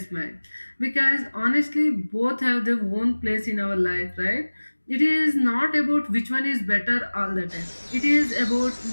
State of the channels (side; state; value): both; inverted; correlation -1.00